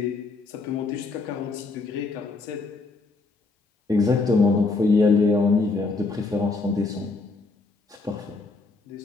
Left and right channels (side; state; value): right; quieter; 3.7 dB